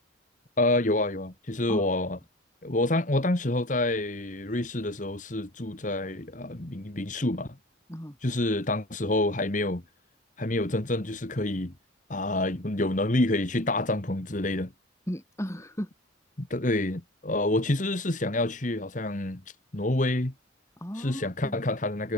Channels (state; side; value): normal; both; correlation 0.40